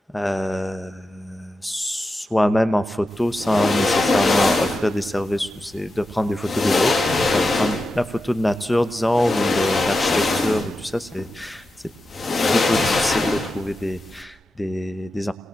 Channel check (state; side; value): normal; both; correlation 0.90